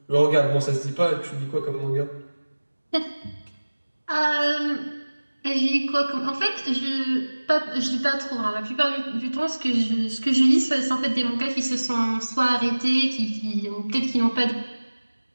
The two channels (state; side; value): inverted; both; correlation -1.00